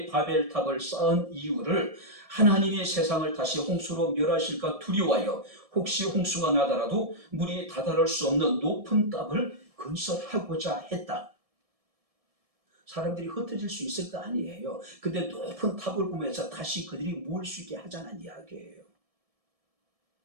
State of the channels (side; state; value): left; late; 1.7 ms